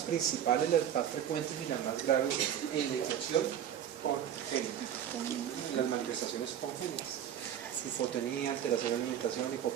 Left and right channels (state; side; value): quieter; left; 9.8 dB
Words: principales, las más frecuentes y las más graves en la infección congénita, en las manifestaciones congénitas: hipotonía, alteración de alimentación,